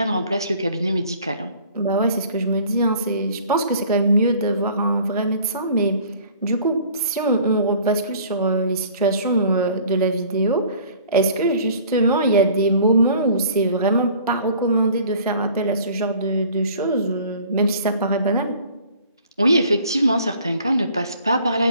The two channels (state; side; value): inverted; both; correlation -0.51